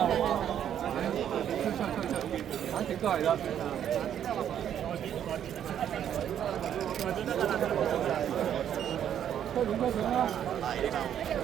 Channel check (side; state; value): left; quieter; 9.8 dB